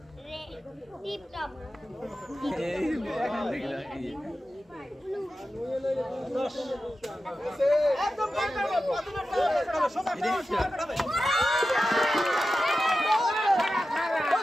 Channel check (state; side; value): normal; both; correlation 0.93